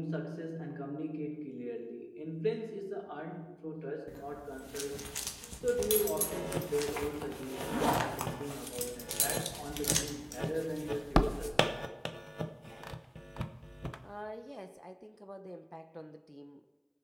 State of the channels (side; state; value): both; identical; correlation 1.00